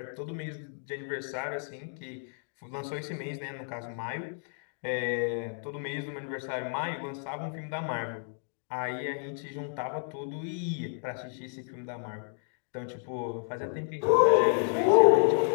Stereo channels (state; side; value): silent; right; 57 dB below the other